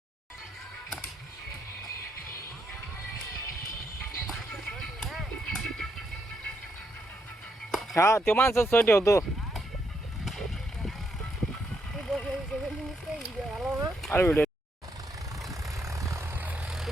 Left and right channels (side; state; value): both; normal; correlation 0.78